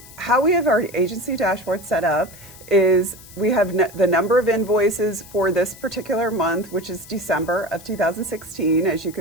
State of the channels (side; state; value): left; noise; hiss, 20 dB below the sound